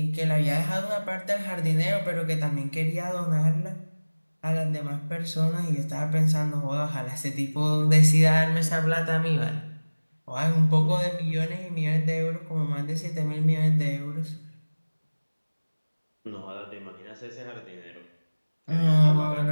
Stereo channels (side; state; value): both; inverted; correlation -1.00